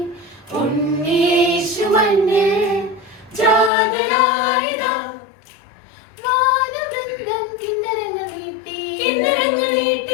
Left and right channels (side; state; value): right; drops out; at 3.7 s